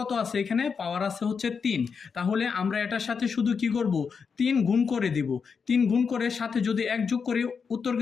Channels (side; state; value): right; quieter; 5.8 dB